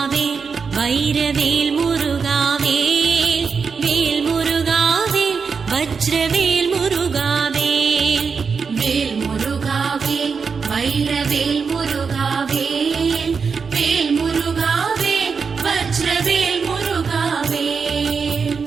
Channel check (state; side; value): quieter; left; 5.5 dB